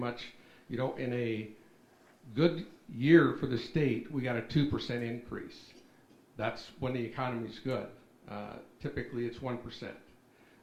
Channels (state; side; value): identical; both; correlation 1.00